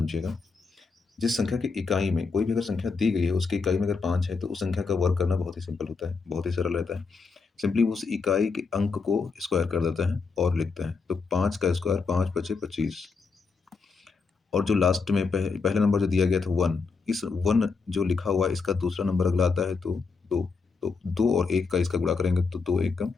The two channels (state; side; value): quieter; right; 4.7 dB